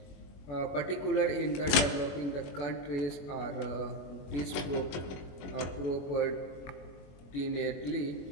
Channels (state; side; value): late; right; 21 ms